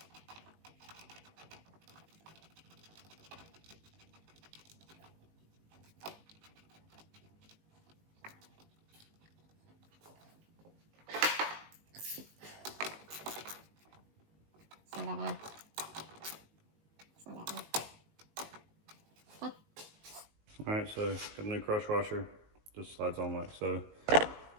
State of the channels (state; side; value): late; left; 19 ms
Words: Send that down. Send that down. Okay. All right, so got a new crush washer. Just slides on like so.